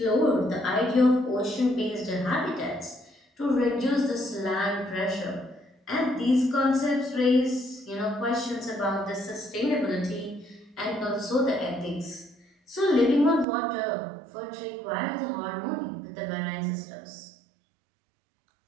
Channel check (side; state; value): left; drops out; at 13.5 s